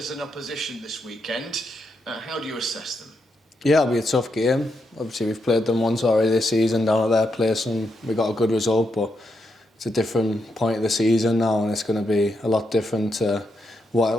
an opposition this weekend, how do you assess them? Yeah, it'll be a tough game. Obviously, we've played them once already this season down at their place and we got a good result, but it's a different point of the season now and it's going to be a lot different to what it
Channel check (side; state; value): both; normal; correlation 0.82